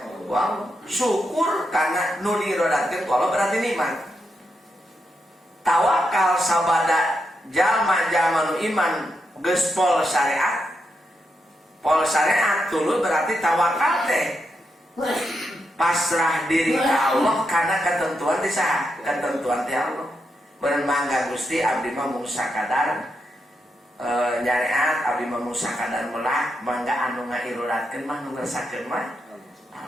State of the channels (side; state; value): both; normal; correlation 0.84